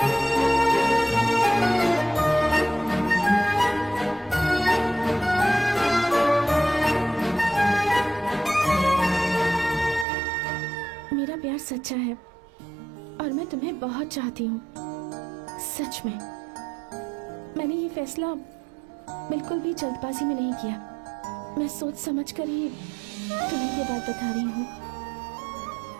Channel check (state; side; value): drops out; left; at 10.1 s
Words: मेरा प्यार सच्चा है और मैं तुम्हें बहुत चाहती हूँ, सच में। मैंने ये फैसला बिल्कुल भी जल्दबाजी में नहीं किया। मैं सोच समझ कर ही तुम्हें ये बात बता रही हूँ।